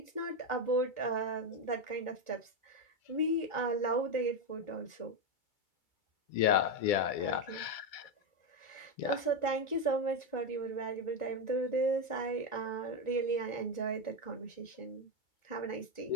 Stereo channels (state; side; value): late; right; 2.3 ms